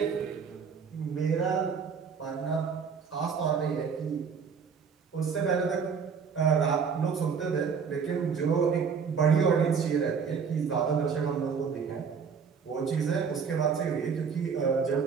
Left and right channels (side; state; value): left; quieter; 6.1 dB